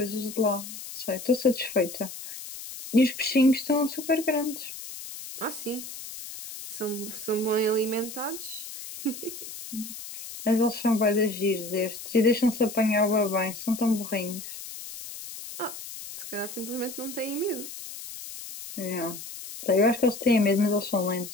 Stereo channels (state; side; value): noise; left; hiss, 11 dB below the sound